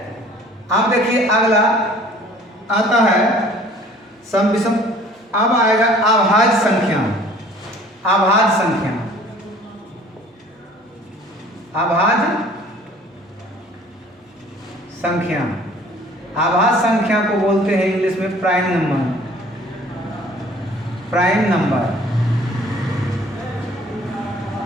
आप देखिए, अगला आता है सम विषम। अब आएगा अभाज्य संख्या। अभाज्य संख्या को बोलते हैं इंग्लिश में प्राइम नंबर।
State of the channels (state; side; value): normal; both; correlation 0.52